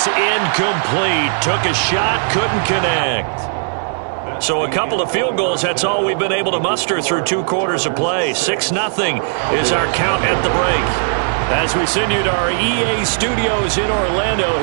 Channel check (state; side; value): silent; left; digital silence